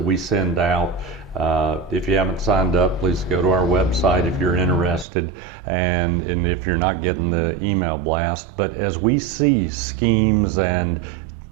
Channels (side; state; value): left; drops out; at 5.1 s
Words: we send out. If you haven't signed up, please go to our website if you're interested, and if you're not getting the email blast. But as we see schemes and